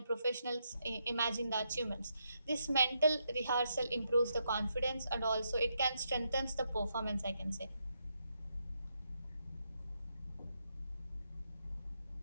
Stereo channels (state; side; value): inverted; both; correlation -0.81